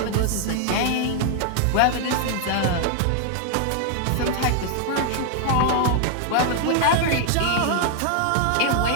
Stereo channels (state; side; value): different; both; correlation 0.00